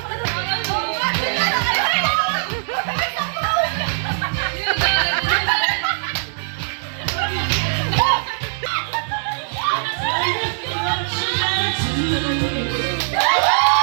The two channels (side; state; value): left; silent; digital silence